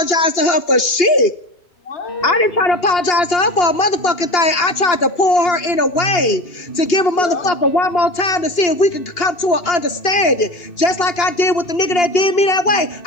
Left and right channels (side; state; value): right; late; 2.8 ms